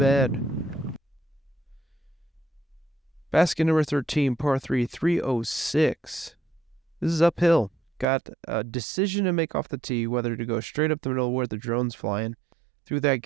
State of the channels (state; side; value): drops out; left; at 8.1 s